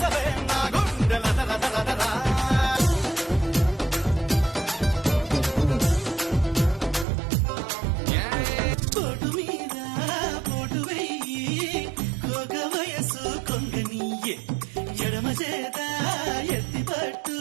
నా గుండెలదరా పోటు మీద పోటు వెయ్యి కోక వయసు కొంగనీయే ఎడమ చేత ఎత్తి పట్టు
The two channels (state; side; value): drops out; left; at 7.1 s